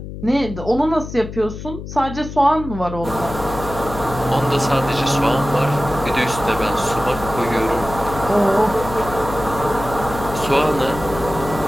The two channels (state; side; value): noise; left; hum, 10 dB below the sound